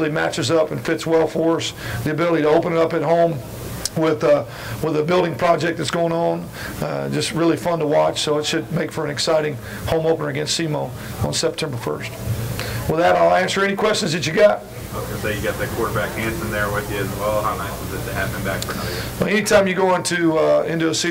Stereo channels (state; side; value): identical; both; correlation 1.00